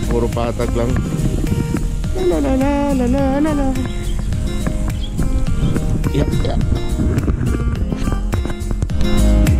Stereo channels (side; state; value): both; identical; correlation 1.00